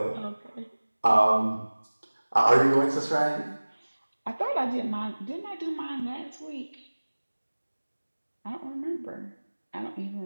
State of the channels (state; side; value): inverted; both; correlation -1.00